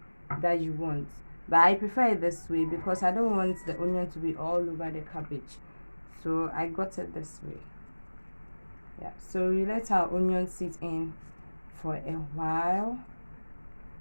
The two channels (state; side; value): inverted; both; correlation -1.00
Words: that you want, but I prefer it this way because I don't want the onion to be all over the cabbage. So I got it this way. Yeah, so we let our onion sit in for a while,